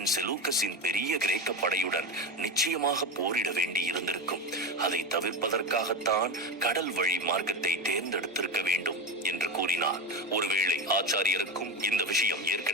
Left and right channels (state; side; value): normal; both; correlation 0.21